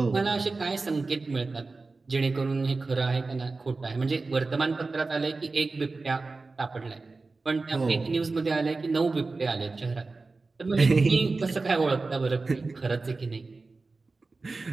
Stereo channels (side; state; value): left; quieter; 3.7 dB